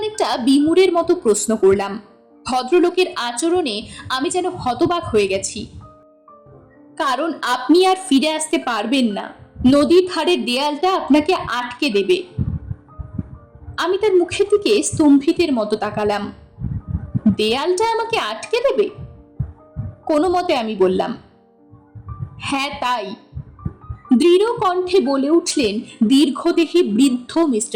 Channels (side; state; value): both; identical; correlation 1.00